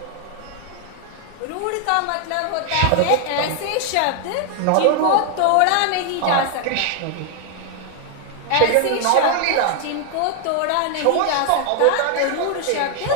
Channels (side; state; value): both; different; correlation 0.00